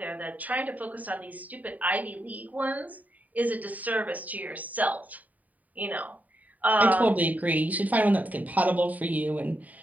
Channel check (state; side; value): late; left; 0.074 ms